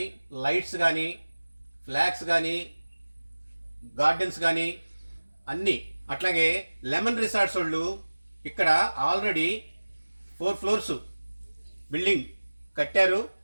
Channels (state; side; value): inverted; both; correlation -1.00